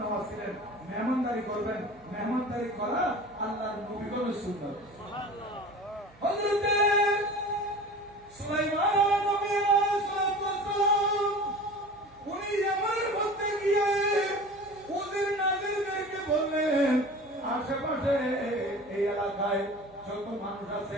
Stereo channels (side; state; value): right; noise; hum, 27 dB below the sound